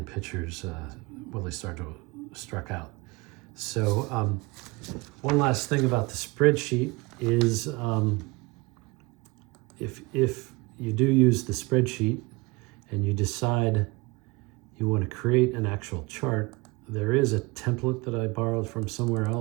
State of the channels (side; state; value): left; quieter; 24.5 dB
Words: pitchers, Willie Stargell struck out. So one last thing about the spreadsheet is if you do use the spreadsheet and you decide you want to create an actual chart, there is a template that I borrowed from somewhere